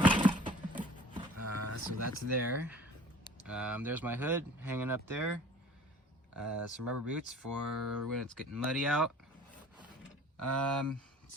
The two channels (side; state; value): both; normal; correlation 0.47